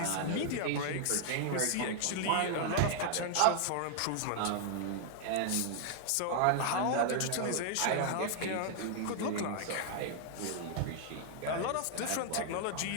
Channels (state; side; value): different; both; correlation 0.00